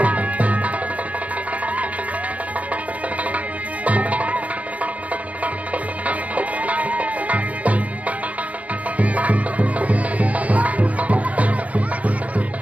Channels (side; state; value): left; late; 0.068 ms